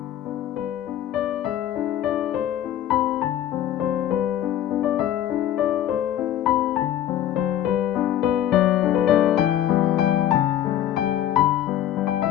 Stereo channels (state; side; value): quieter; right; 11.6 dB